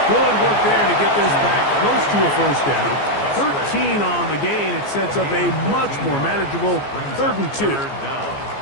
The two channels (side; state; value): right; late; 14 ms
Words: Good work there to get this back close to a first down. 13 on the gain. It sets up a much more manageable 3rd and 2.